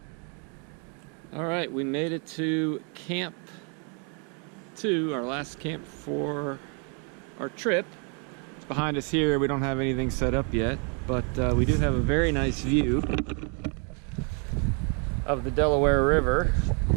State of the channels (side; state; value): left; quieter; 37.9 dB